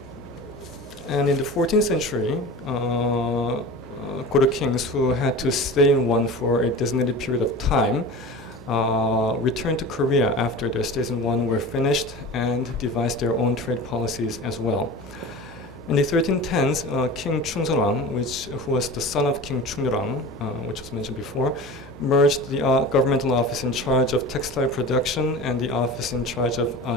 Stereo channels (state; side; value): noise; left; hum, 22 dB below the sound